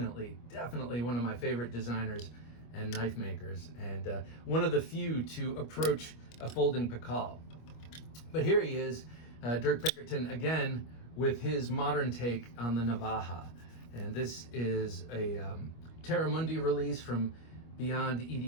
one of my favorite designers and knife makers, and one of the few to approach a folding Pikal. But here he is, Dirk Pinkerton again with his modern take on the Navaja, and this is a Terramundi release from Beyond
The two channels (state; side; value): late; right; 25 ms